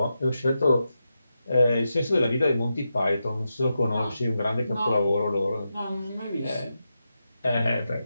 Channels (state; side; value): inverted; both; correlation -0.88